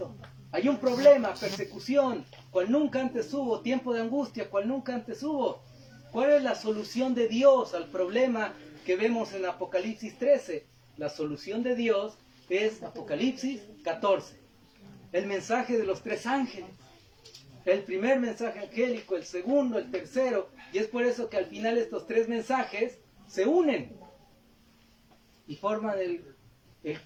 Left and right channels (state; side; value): identical; both; correlation 1.00